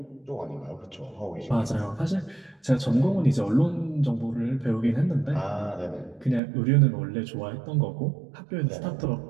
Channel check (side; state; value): left; drops out; at 6.4 s